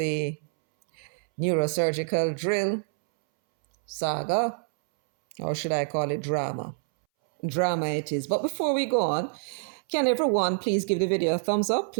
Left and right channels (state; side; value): silent; left; 60 dB below the other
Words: neurosurgical drill saga, or should I call it drama? Drama it is. But before we go on, can everyone please give the video a thumbs up?